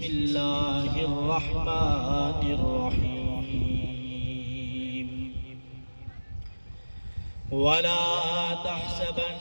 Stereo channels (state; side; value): inverted; both; correlation -1.00